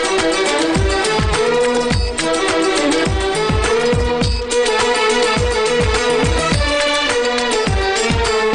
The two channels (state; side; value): identical; both; correlation 1.00